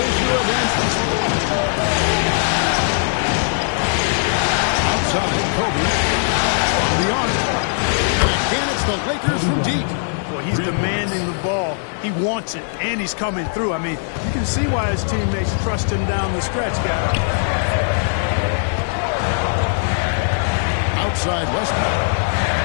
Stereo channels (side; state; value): right; silent; digital silence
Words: Outside, Kobe. On the arc. And again, it's the Lakers from deep. Well, he's demanding the ball. He wants it, and he's coming through. I mean, you can see why his teammates trust him down the stretch, guys. Outside Westbrook.